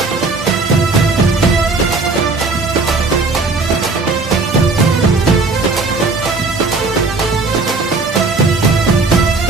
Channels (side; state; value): left; quieter; 3.8 dB